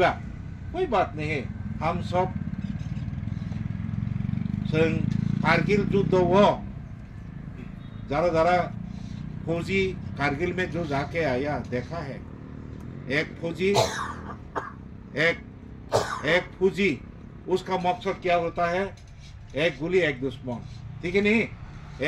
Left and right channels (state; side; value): identical; both; correlation 1.00